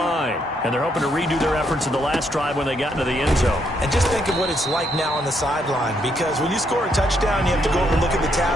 And they're hoping to redo their efforts in the last drive when they got into the end zone. And just think of what it's like now on the sideline, because when you score a touchdown, you have to go over and look at the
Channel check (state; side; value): normal; both; correlation 0.74